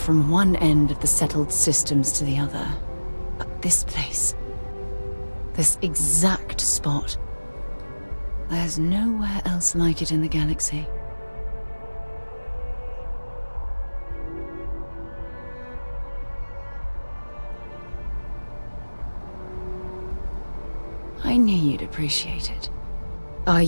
one end of the settled systems to the other. But this place, this exact spot, there's nowhere else like it in the galaxy. I knew you'd appreciate it. I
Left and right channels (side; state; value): both; inverted; correlation -1.00